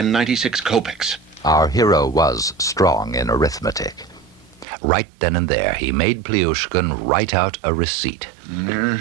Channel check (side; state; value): left; drops out; at 4.7 s